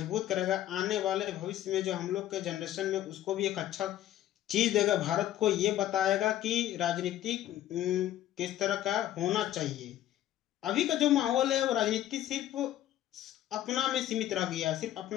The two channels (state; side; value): quieter; right; 12.8 dB